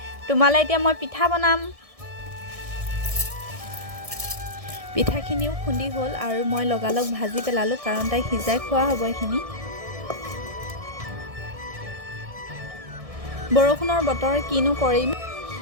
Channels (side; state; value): left; late; 1.6 ms